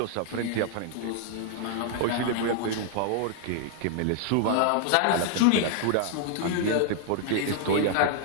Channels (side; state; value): both; different; correlation 0.00